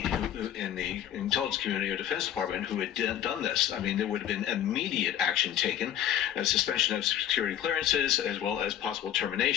who, in the intelligence community or Defense Department who had done this, I mean, there would have been immediate action taken, a suspension of security clearances, as well as possible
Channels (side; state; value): right; quieter; 10.8 dB